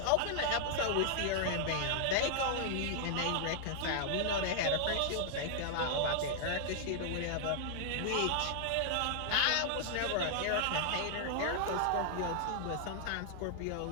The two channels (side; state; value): both; different; correlation 0.00